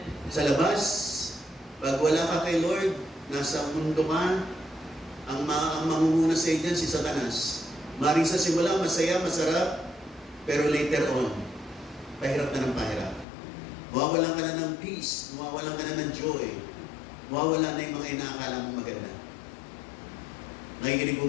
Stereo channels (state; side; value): drops out; right; at 13.2 s